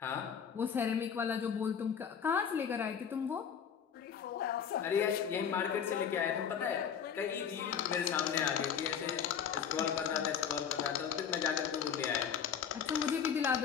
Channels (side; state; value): right; quieter; 7.7 dB